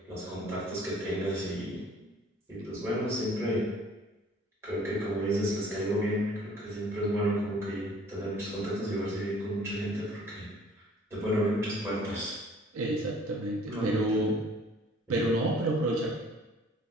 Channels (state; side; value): normal; both; correlation 0.54